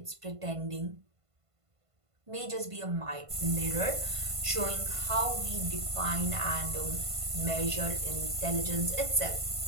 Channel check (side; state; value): left; late; 1.5 ms